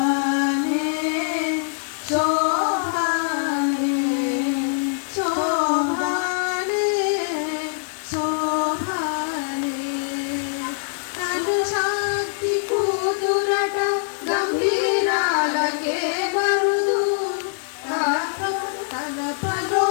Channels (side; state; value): right; silent; digital silence